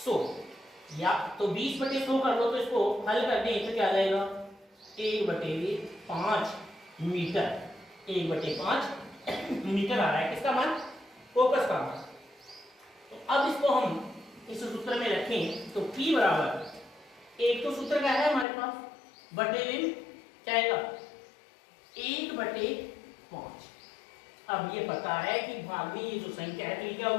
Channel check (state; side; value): drops out; right; at 18.4 s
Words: या तो 20/100 कर लो, तो इसको हल कर दें तो क्या आ जाएगा 1/5 मीटर, 1/5 मीटर आ रहा है, किसका मान, फोकस का मान। तो अब इसको हम इस सूत्र में रखें, तो P बराबर, एक तो सूत्र क्या है हमारे पास, बटे क्या आएगा 1/5। अब ये पता है कि भाग में ये जो संख्या है तो ये क्या